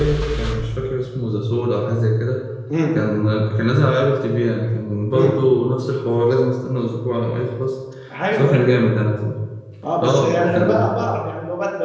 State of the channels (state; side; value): identical; both; correlation 1.00